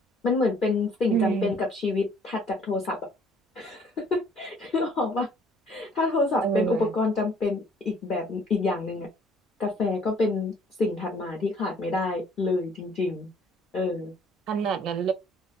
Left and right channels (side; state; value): both; normal; correlation 0.59